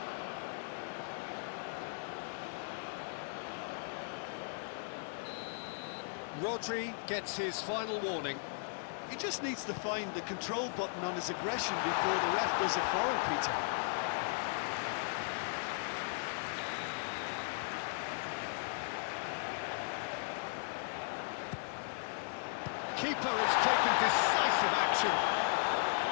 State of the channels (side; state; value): right; silent; 53 dB below the other